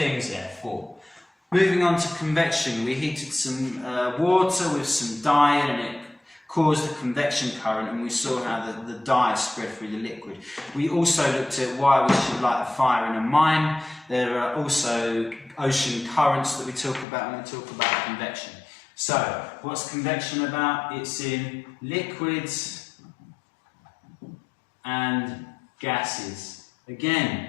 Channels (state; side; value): drops out; right; at 17.1 s